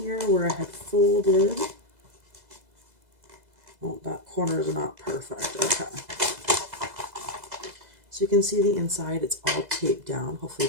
where I had folded. Oh, that corner is not perfect. Okay. So you can see the inside, it's all taped down. Hopefully you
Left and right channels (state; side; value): late; left; 2.0 ms